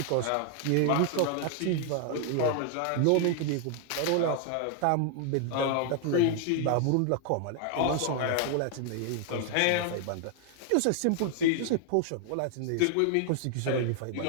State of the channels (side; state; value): both; different; correlation 0.00